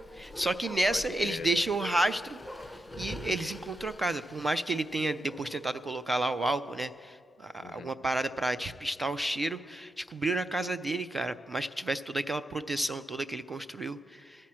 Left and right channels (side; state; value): both; normal; correlation 0.86